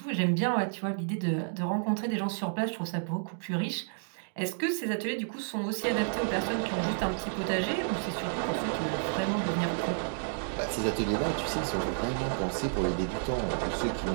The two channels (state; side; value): silent; left; digital silence